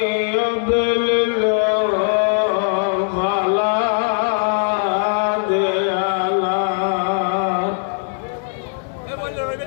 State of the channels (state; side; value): silent; right; digital silence